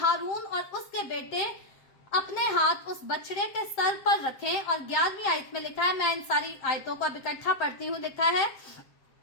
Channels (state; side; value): late; right; 7.6 ms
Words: और उसके बेटे अपने हाथ उस बछड़े के सर पर रखें। और 11वीं आयत में लिखा है, मैं इन सारी आयतों को अब इकट्ठा पढ़ती हूँ, लिखा है